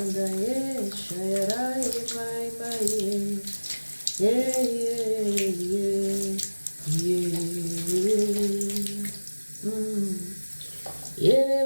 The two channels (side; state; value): both; inverted; correlation -1.00